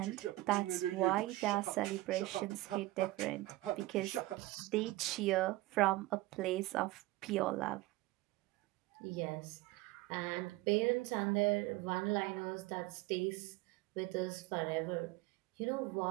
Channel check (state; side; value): quieter; left; 18.6 dB